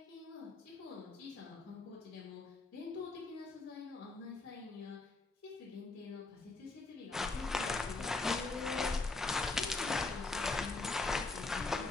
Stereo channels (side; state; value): right; quieter; 3.5 dB